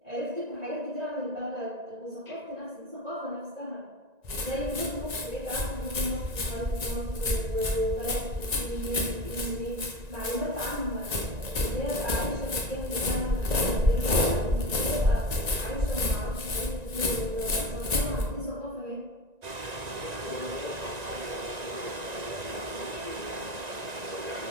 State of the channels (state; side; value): late; left; 1.9 ms